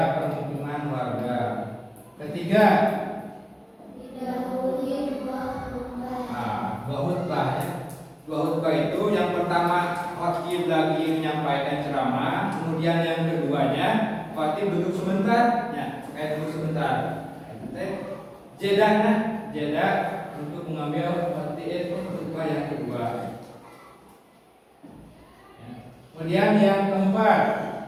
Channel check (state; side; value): identical; both; correlation 1.00